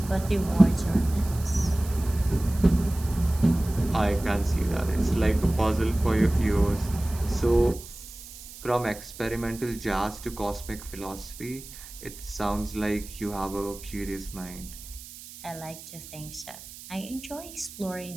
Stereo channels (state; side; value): noise; right; hiss, 15 dB below the sound